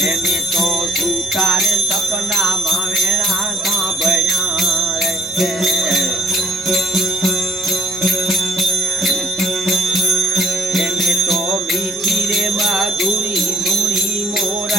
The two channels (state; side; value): normal; both; correlation 0.59